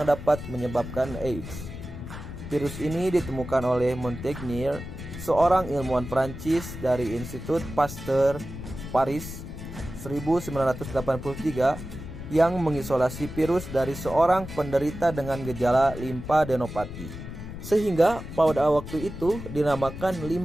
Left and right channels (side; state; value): left; noise; rumble, 10 dB below the sound